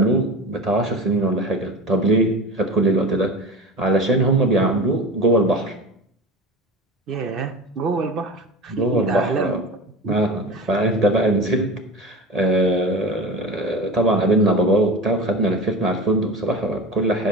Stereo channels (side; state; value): both; normal; correlation 0.31